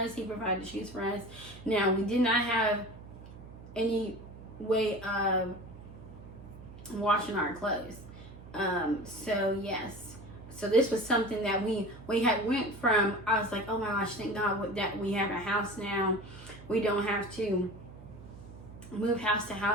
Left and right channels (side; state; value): right; noise; hum, 16 dB below the sound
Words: He provided shoes for us. Now, we did not have any way of washing our clothes. So yes. So this was something that we had went from. I was like, oh my gosh, thank God that we have a house now. We don't have to move house to